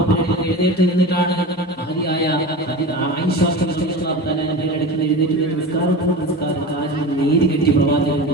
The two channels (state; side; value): normal; both; correlation 0.30